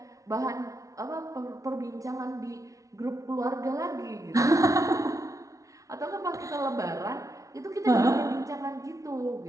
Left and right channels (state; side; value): late; left; 0.16 ms